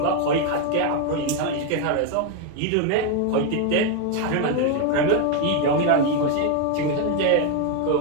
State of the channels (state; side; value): different; both; correlation 0.01